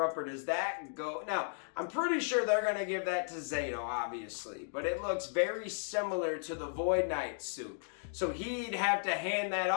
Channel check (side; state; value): right; silent; digital silence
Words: or does that go? Now, I'm pretty sure they're going to give that to Zato, obviously, but it looks very similar to the Void Knight suit. So he'd have to hand that